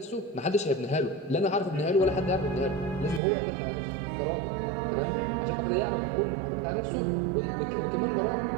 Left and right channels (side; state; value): left; drops out; at 3.2 s